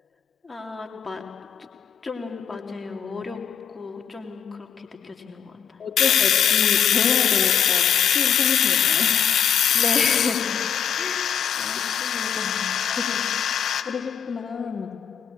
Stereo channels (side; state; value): right; quieter; 8.3 dB